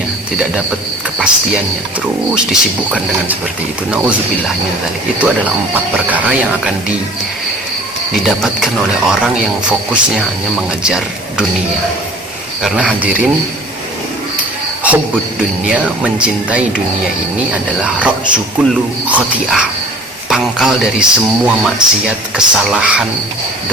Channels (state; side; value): normal; both; correlation 0.46